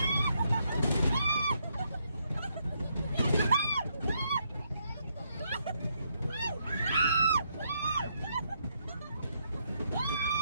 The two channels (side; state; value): both; inverted; correlation -0.76